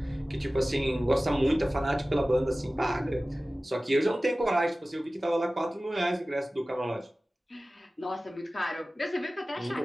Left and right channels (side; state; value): both; normal; correlation 0.97